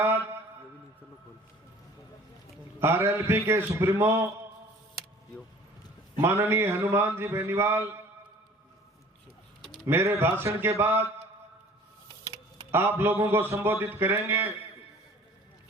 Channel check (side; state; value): both; normal; correlation 0.49